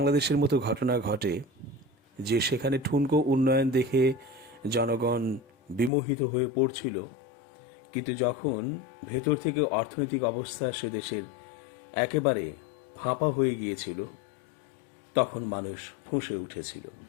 মতো ঘটনা ঘটে, যে সেখানে ঠুনকো উন্নয়ন দেখে জনগণ বিমোহিত হয়ে পড়ছিল, কিন্তু যখন ভেতর থেকে অর্থনৈতিক অবস্থা সে দেশের একেবারে ফাঁপা হয়ে গিয়েছিল, তখন মানুষ ফুঁসে উঠেছিল।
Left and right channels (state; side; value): drops out; right; at 5.9 s